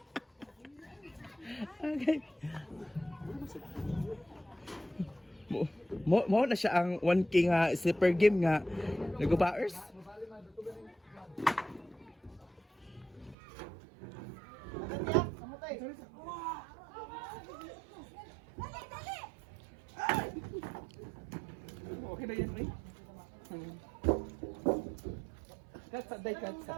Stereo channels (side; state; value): left; drops out; at 13.4 s